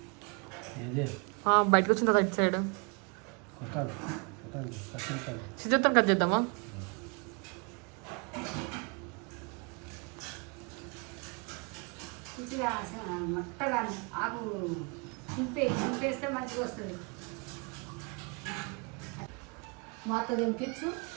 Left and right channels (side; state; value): left; quieter; 33.7 dB